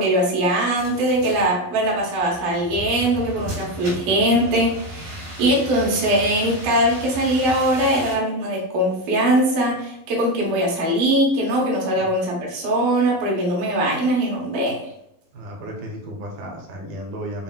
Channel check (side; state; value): left; late; 12 ms